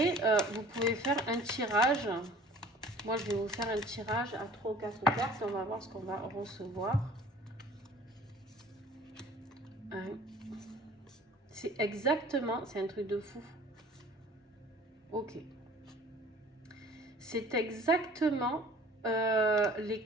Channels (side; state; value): both; normal; correlation 0.48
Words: vous pouvez faire un tirage. Moi, je vais vous faire un tirage à 3 ou 4 cartes. On va voir ce qu'on va recevoir. C'est exactement... C'est un truc de fou. Ok. C'est exactement les